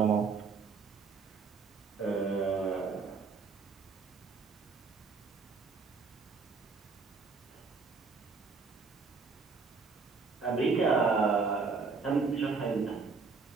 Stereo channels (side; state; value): left; quieter; 4.7 dB